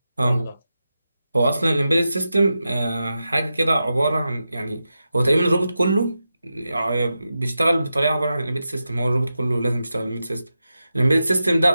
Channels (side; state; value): both; inverted; correlation -0.90